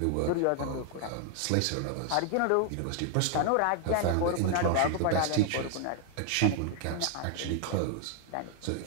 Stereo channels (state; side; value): different; both; correlation 0.00